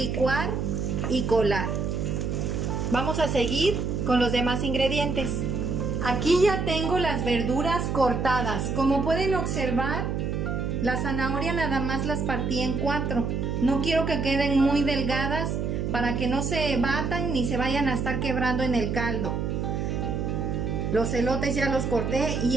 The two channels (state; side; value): noise; right; hum, 1 dB below the sound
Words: y colar. Vamos a seguir con los demás ingredientes. Aquí ya tengo las verduras cortadas. Como pueden observar, la zanahoria nada más las partí en 4. No quiero que queden muy delgadas para que no se batan ni se vayan a estar quebrando en el caldo. Los elotes ya los corté y